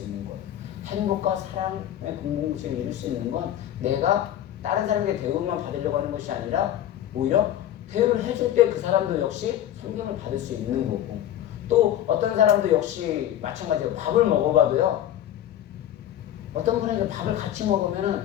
있는 거예요. 행복과 사랑의 공동체를 이룰 수 있는 건 내가 다른 사람에게 대우만 받으려고 하는 것이 아니라 오히려 대우를 해줄 때 그 사람도 역시 존경을 받을 수 있는 거고 또 어떤 사람도 역시 마찬가지로 밥을 먹어봐도요. 어떤 분에게 밥을 같이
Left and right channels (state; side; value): quieter; right; 11.7 dB